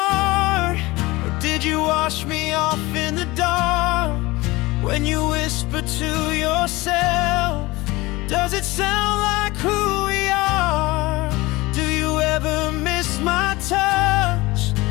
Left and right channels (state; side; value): quieter; right; 21.2 dB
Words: Or did you wash me off in the dark? When you whisper to yourself, does it sound like who we are? Do you ever miss my touch